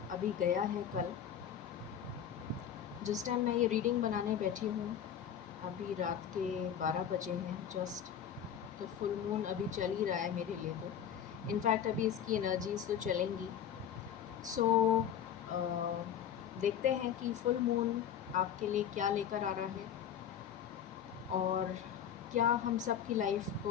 अभी गया है कल। जिस टाइम मैं ये रीडिंग बनाने बैठी हूँ अभी रात के 12 बजे हैं जस्ट। तो फुल मून अभी चल ही रहा है मेरे लिए। तो इनफैक्ट अभी इसकी एनर्जीज तो चलेंगी। सो देखते हैं कि फुल मून आपके लिए क्या लेकर आ रहा है और क्या हम सब की लाइफ को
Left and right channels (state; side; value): quieter; right; 9.0 dB